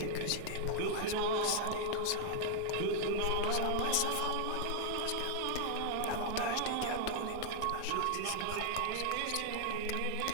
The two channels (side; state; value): both; different; correlation 0.00